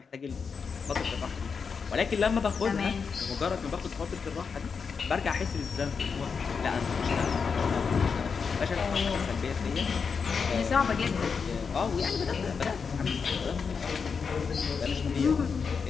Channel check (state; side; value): quieter; right; 5.7 dB